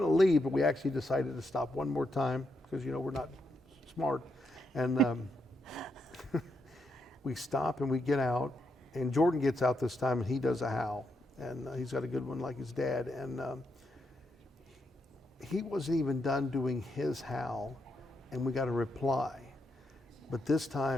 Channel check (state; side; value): normal; both; correlation 0.81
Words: leave, but we actually decided to stop one more time because, you know, we're not smart. And we stop and we get out. And Jordan gets out this time, and he does a howl. And he's got a good one like his dad. And he wasn't even done doing his howl, and we got a reply. But this